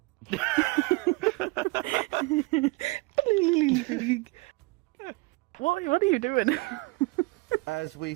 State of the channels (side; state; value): left; quieter; 24.9 dB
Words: What are you doing? as we